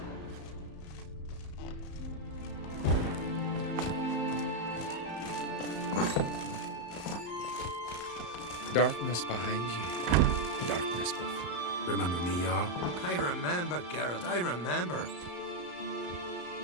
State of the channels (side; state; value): right; late; 34 ms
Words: Darkness behind you. Darkness behind you. Remember me, Jarl? I remember, Geralt, I remember.